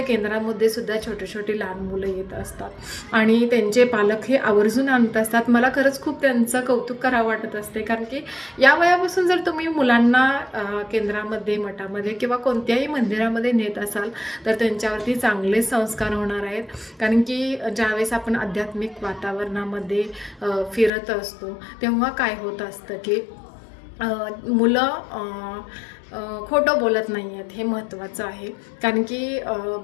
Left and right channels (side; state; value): right; drops out; at 20.9 s